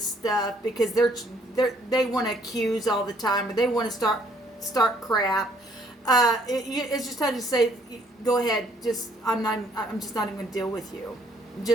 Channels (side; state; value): both; normal; correlation 0.64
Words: stuff because they want to accuse all the time or they want to start crap. It's just time to say, go ahead. I'm just not even going to deal with you. I'm